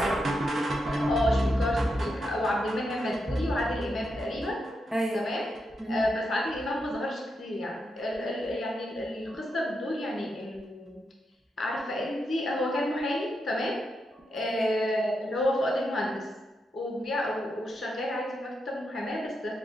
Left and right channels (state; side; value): normal; both; correlation 0.84